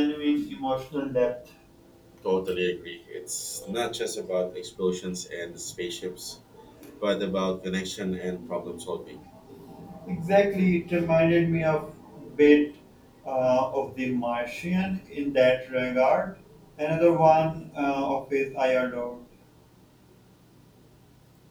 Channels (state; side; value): identical; both; correlation 1.00